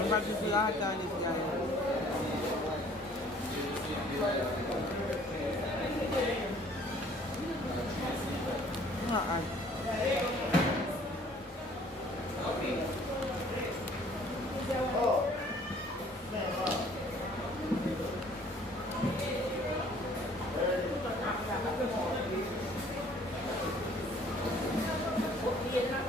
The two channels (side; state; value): both; normal; correlation 0.56